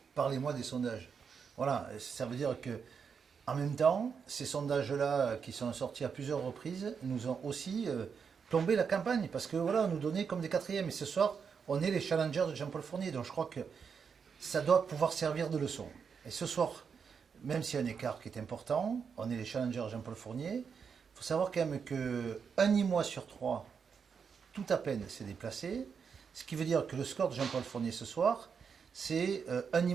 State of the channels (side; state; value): left; quieter; 6.3 dB